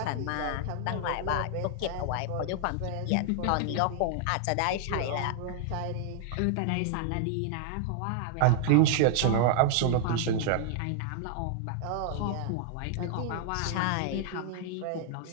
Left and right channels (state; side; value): different; both; correlation 0.00